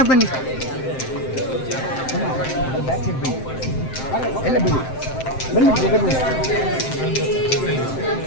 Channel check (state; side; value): late; right; 7.7 ms